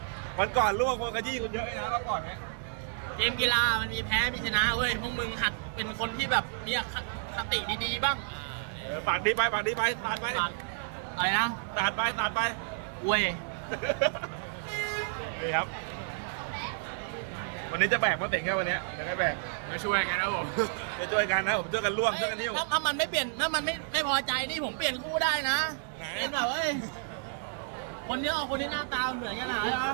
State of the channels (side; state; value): left; silent; digital silence